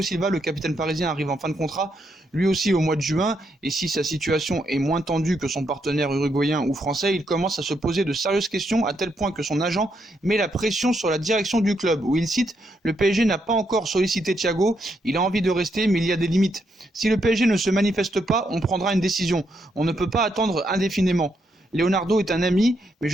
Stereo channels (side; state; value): both; normal; correlation 0.78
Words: Silva. Le capitaine parisien arrive en fin de contrat, lui aussi au mois de juin, et si sa situation est moins tendue que son partenaire uruguayen ou français, il commence à se poser de sérieuses questions, à tel point que son agent met la pression sur la direction du club, où il cite: le PSG n'a pas encore sollicité Thiago, il a envie de rester mais il y a des limites. Si le PSG ne se manifeste pas, on prendra une décision. On ne peut pas attendre indéfiniment. Leonardo est un ami, mais